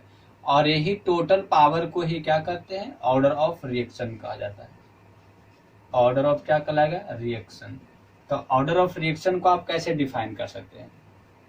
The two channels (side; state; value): both; identical; correlation 1.00